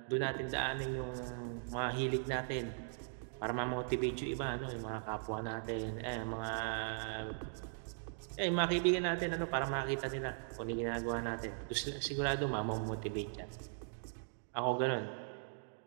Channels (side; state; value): left; silent; digital silence